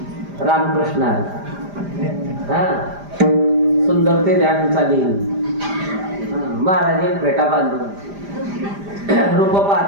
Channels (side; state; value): left; late; 5.0 ms